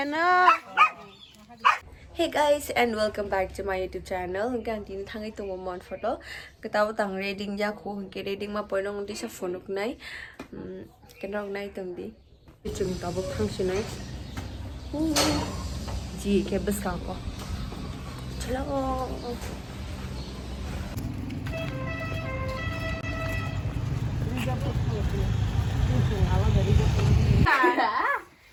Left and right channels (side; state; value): both; identical; correlation 1.00